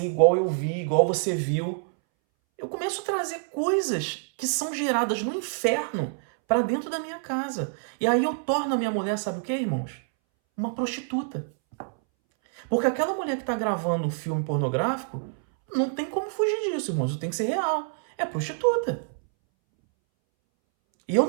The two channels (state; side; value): silent; left; 61 dB below the other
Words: igual eu vi, igual você viu. Eu começo a trazer coisas que são geradas no inferno para dentro da minha casa. E aí eu torno a minha mulher, sabe o que, irmãos? Uma prostituta. Porque aquela mulher que está gravando um filme pornográfico, não tem como fugir disso, irmãos. Tem que ser real. É prostituta. E eu